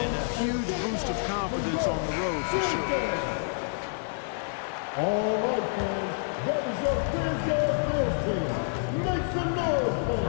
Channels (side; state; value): right; silent; digital silence